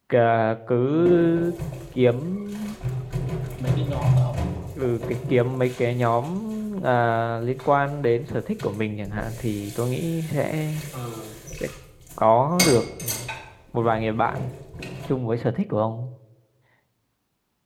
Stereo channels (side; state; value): both; identical; correlation 1.00